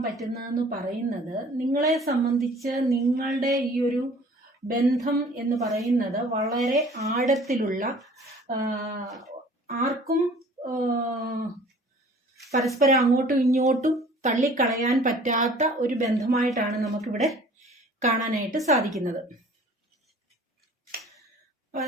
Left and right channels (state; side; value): normal; both; correlation 0.50